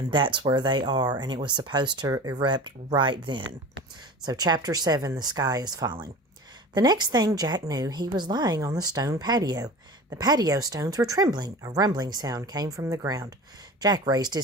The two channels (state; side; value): normal; both; correlation 0.35